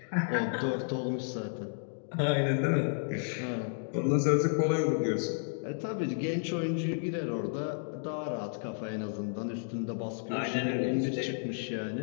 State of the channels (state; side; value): silent; right; digital silence